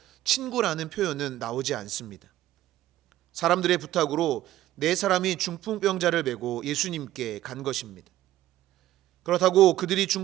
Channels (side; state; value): left; quieter; 14.2 dB